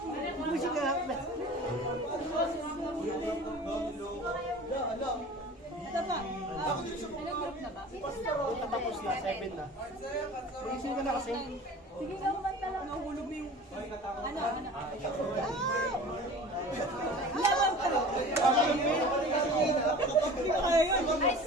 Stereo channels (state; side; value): normal; both; correlation 0.40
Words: Musik ka. Tapos na, 7 na. Isin ka na kasi. Sige ka kumanta lang. Nahulog mo yung... Ano? Laban ka. Hindi ko kaya yun. High